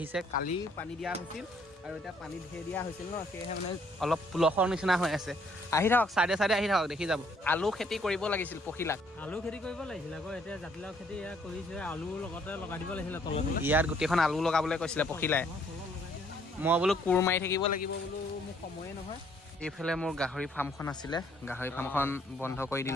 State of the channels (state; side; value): normal; both; correlation 0.65